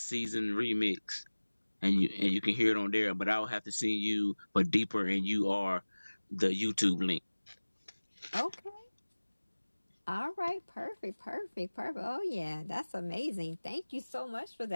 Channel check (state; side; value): inverted; both; correlation -1.00